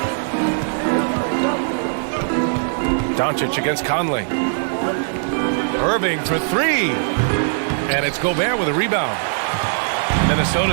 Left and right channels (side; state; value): left; silent; 62 dB below the other